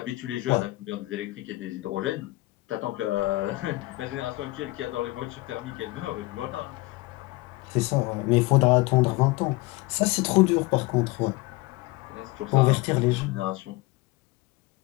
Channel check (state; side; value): quieter; right; 21.2 dB